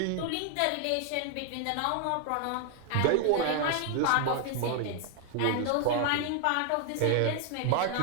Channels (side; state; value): both; different; correlation 0.00